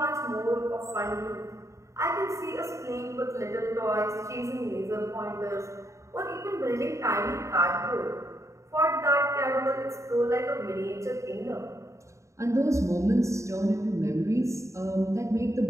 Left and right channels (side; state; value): left; late; 0.14 ms